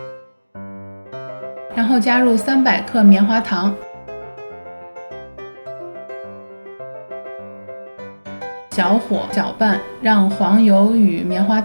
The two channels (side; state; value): both; inverted; correlation -1.00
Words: 然后加入300克棉花糖，小火搅拌，让黄油与棉花